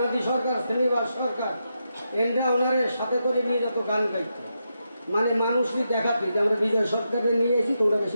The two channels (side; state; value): both; inverted; correlation -0.85